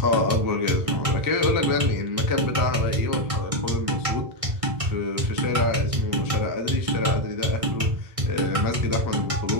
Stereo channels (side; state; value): left; late; 1.6 ms